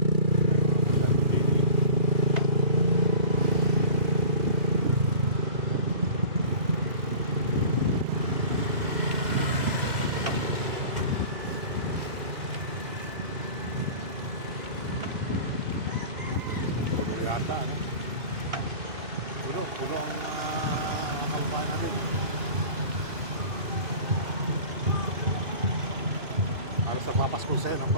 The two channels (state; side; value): late; left; 2.4 ms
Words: Yata, ano? Puno ang mga kababayan natin. Halos nagpapasko sa'yo, ang